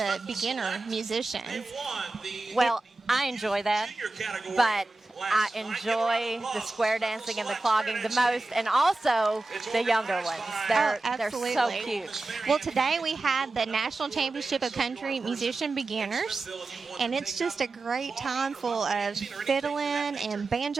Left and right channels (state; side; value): quieter; left; 3.3 dB